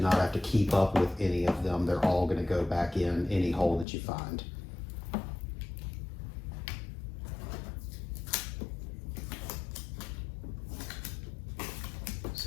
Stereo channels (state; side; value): drops out; right; at 3.9 s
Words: not have to keep up with any of them. They're all going to go back in any hole that you find.